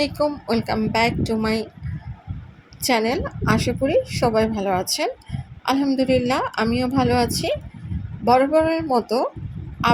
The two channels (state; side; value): identical; both; correlation 1.00